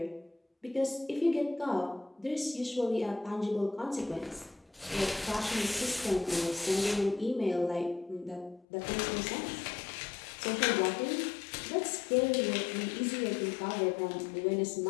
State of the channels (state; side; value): drops out; right; at 8.7 s